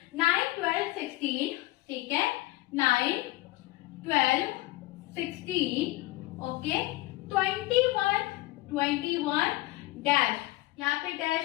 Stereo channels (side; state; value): right; quieter; 19.2 dB